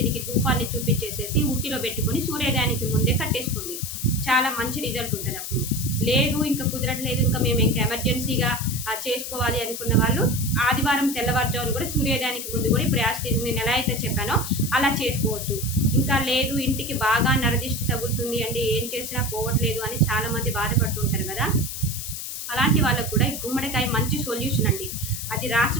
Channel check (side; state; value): left; noise; hiss, 7 dB below the sound